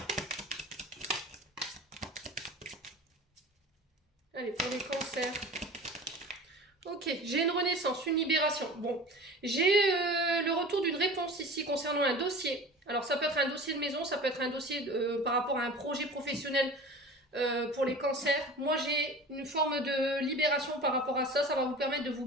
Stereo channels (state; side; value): normal; both; correlation 0.38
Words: Allez, pour les cancers. Ok, j'ai une renaissance, une libération. Bon, j'ai le retour d'une réponse ici concernant un dossier. Alors, ça peut être un dossier de maison, ça peut être un dossier par rapport à un projet professionnel pour les cancers. Moi, j'ai une forme de libération par rapport à ça. Ça va vous permettre de vous